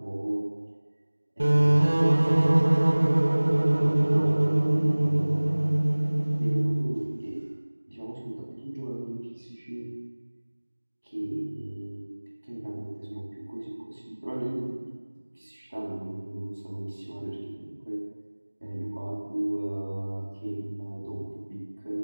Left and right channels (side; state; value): both; inverted; correlation -1.00